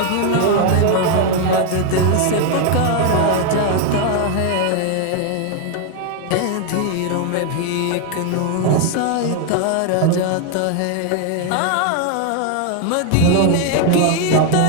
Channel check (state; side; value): different; both; correlation 0.01